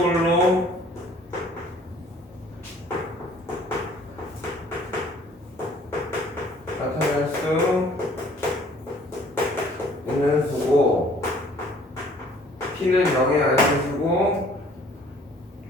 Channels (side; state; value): both; normal; correlation 0.56